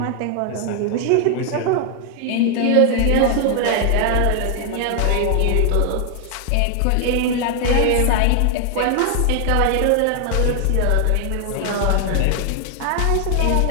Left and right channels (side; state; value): both; different; correlation 0.00